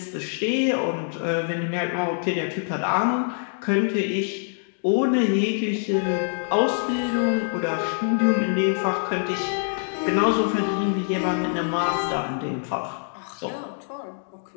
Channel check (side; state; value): right; silent; digital silence